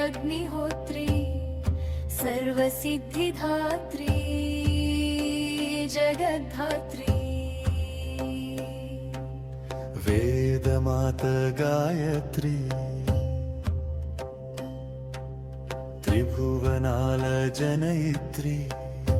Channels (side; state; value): both; identical; correlation 1.00